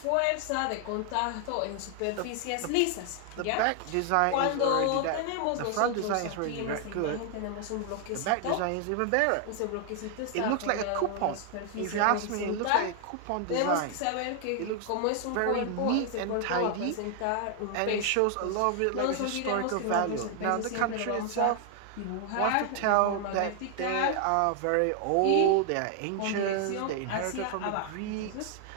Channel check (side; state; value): both; different; correlation 0.00